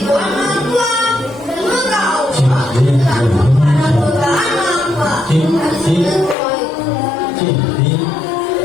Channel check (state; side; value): drops out; right; at 6.4 s